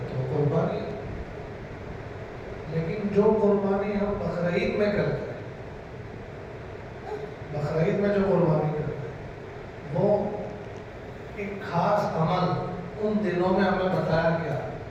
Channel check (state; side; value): identical; both; correlation 1.00